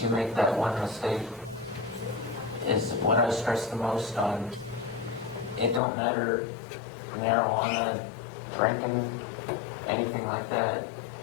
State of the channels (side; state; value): right; drops out; at 5.8 s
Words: you make that one mistake, is what I stress the most on. It don't matter, marijuana, drinking, anything like that.